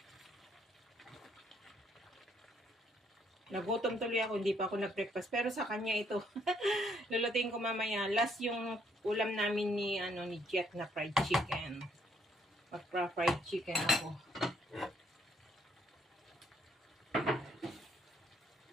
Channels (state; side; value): normal; both; correlation 0.70